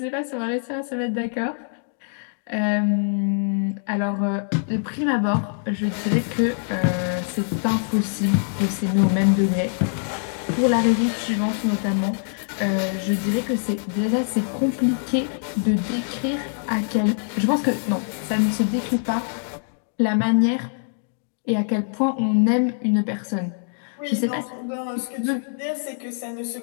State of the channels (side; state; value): right; silent; digital silence